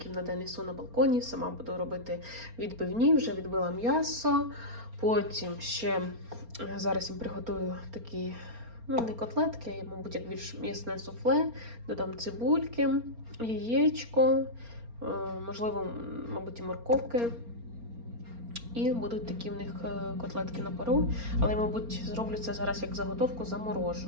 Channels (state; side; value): late; left; 4.3 ms